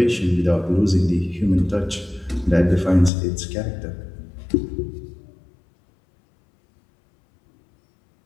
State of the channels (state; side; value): drops out; right; at 3.1 s